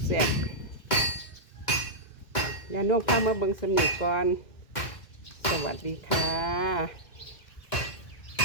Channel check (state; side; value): late; right; 2.1 ms